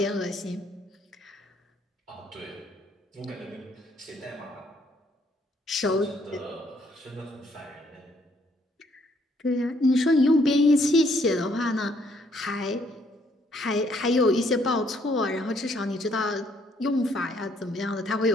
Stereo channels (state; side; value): normal; both; correlation 0.68